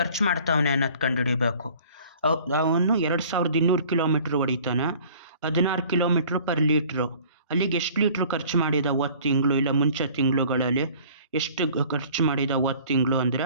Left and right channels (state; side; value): inverted; both; correlation -0.50